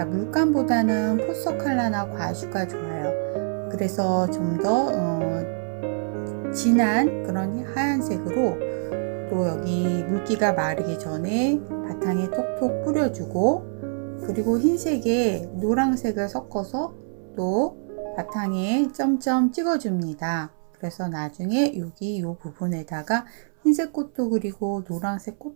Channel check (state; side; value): silent; left; 62 dB below the other